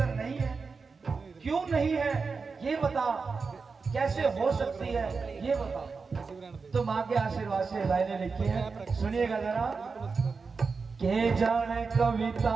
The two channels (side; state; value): left; quieter; 4.7 dB